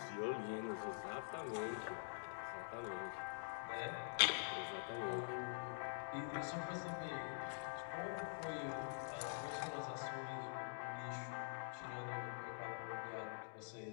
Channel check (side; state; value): right; silent; digital silence